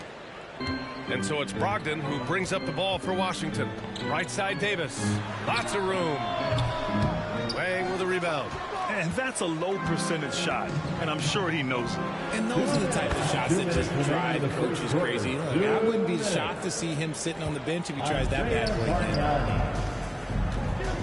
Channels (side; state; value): both; identical; correlation 1.00